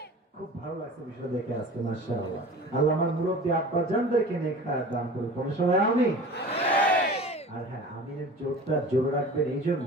খুব ভালো লাগছে বিষয় দেখে আজকে, মাশাআল্লাহ। আল্লাহ আমার মুরব্বী আব্বা জানদেরকে নেক হায়াত দান করুন। কোন সবাই আমিন। আর হ্যাঁ, আমিনের জোরটা জোরে রাখবেন এই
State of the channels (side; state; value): both; normal; correlation 0.39